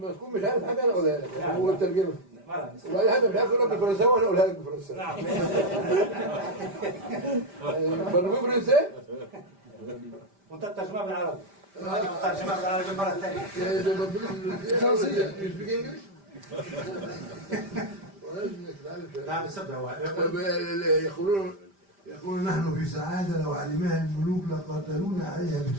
تكون مش عارف حاجة أنا أقولها لك. هو الترجمة. وأي حاجة مش عارف أقولها بالفرنساوي وأنا أقولها لك بالفرنساوي. نعم. برضو فرنسي؟ وأنت الترجمة بالعربي. الترجمة بالعربي مرة ثانية. ده برضو فرنسي. You speak English? نعم سبعة. يقولون نحن في سعادة لو علمها الملوك لقاتلونا عليها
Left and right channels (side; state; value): left; late; 5.1 ms